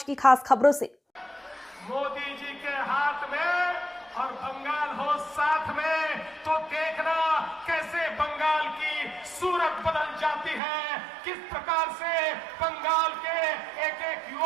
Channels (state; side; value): drops out; left; at 10.6 s